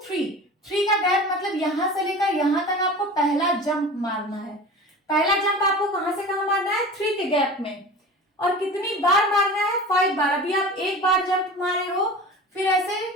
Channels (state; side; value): normal; both; correlation 0.35